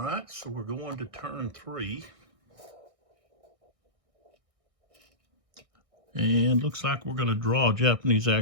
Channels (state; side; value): late; left; 1.6 ms